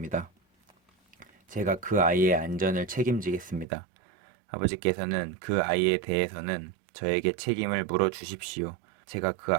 제가 그 아이의 안전을 책임지겠습니다. 아버지께서는 그 아이에 대해서는 저에게 책임을 물어 주십시오. 제가 그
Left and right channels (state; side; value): drops out; left; at 3.7 s